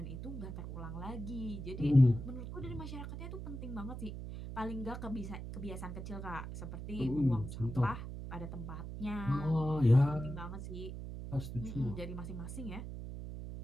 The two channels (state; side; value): noise; right; hum, 7 dB below the sound